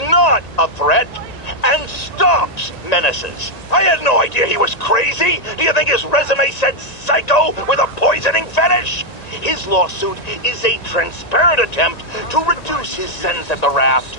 not a threat and stops menaces. I had no idea he was crazy. Do you think his resume said psycho with a poisoning fetish? His lawsuit is a transparent attempt to reduce his sentence at the raft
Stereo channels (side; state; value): right; late; 1.9 ms